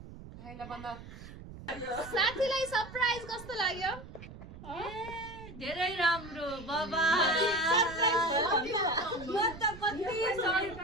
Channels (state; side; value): noise; right; rumble, 15 dB below the sound